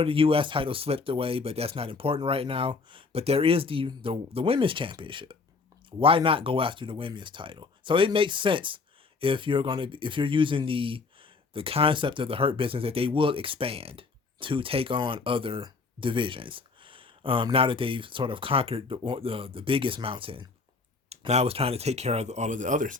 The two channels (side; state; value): right; quieter; 4.4 dB